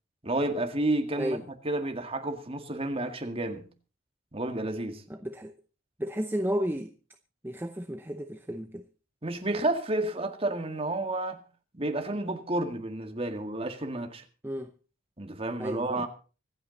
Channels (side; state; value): both; normal; correlation 0.51